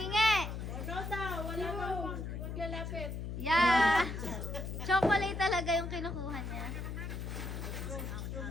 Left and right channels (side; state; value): left; noise; hum, 5 dB below the sound